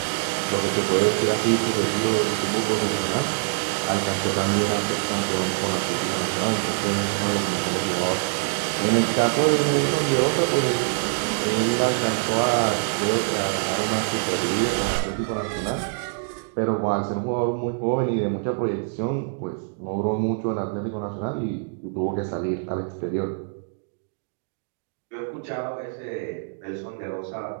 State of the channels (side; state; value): left; silent; digital silence